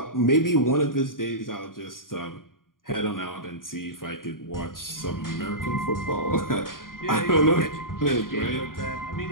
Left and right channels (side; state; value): right; late; 0.90 ms